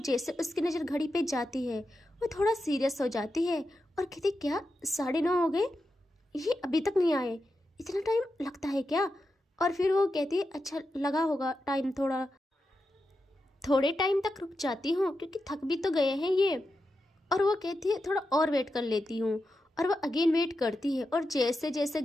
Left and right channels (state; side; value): normal; both; correlation 0.89